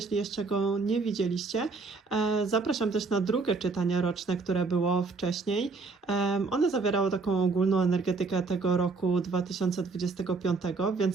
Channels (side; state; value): left; quieter; 4.1 dB